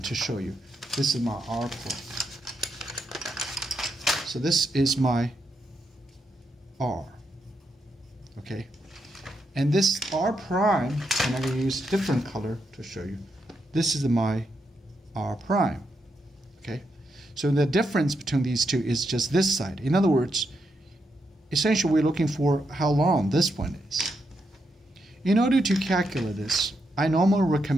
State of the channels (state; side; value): normal; both; correlation 0.82